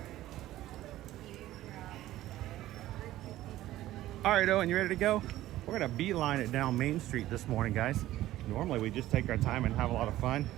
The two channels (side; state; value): left; quieter; 14.8 dB